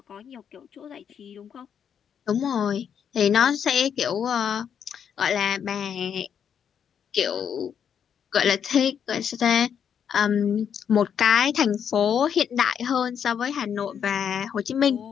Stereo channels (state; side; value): quieter; right; 8.0 dB